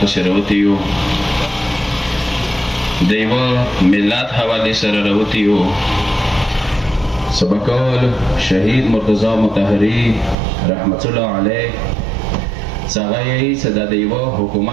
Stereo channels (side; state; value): left; drops out; at 10.4 s